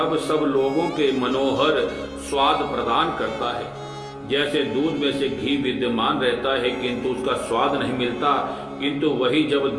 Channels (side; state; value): both; identical; correlation 1.00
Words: सब लोगों के मनोहर स्वाद प्रदान करता है। जैसे दूध में से घी विद्यमान रहता है किंतु उसका स्वाद नहीं मिलता, किंतु वही जब